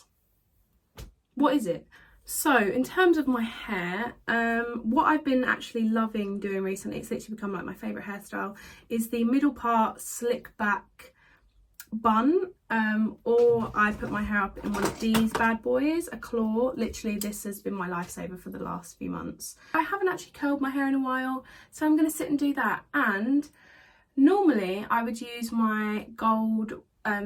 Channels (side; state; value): both; identical; correlation 1.00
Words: what is it? So in terms of my hair, what I've been actually loving doing recently, it's literally become like my favourite hairstyle, is the middle part slick back bun, or I put my hair up in one of these bad boys, a claw. Literally this has been my lifesaver for the last few months. I haven't actually curled my hair in a while, so I'm going to sit and do that. And normally I would use my gold,